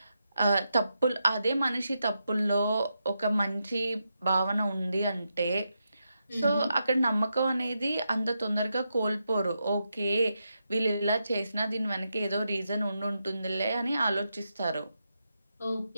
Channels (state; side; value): inverted; both; correlation -0.85